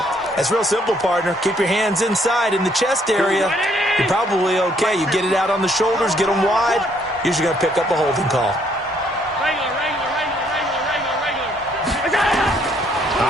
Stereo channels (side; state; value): both; normal; correlation 0.67